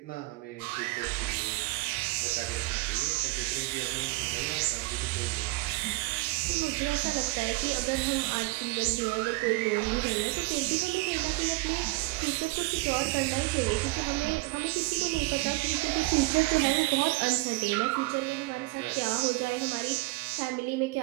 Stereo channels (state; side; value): quieter; left; 22.6 dB